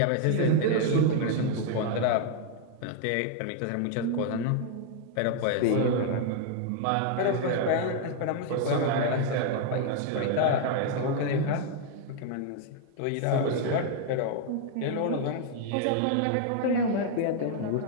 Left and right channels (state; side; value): different; both; correlation 0.00